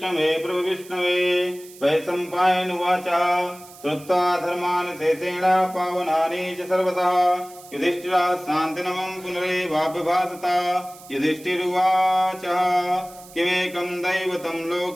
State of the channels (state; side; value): noise; right; hiss, 20 dB below the sound